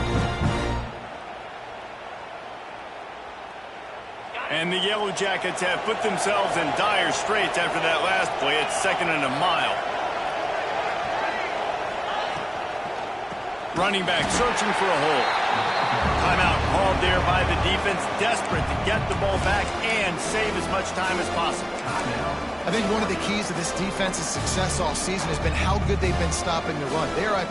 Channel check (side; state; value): both; identical; correlation 1.00